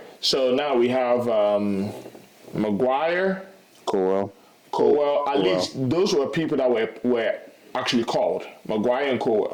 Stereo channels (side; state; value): both; identical; correlation 1.00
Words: So now we have Migure, Colwell. At least those were people that were actually called, Migure and